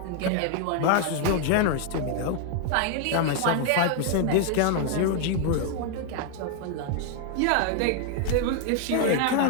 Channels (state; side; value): different; both; correlation 0.00